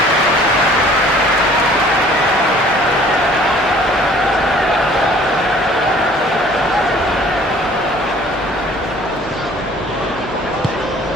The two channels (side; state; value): both; normal; correlation 0.53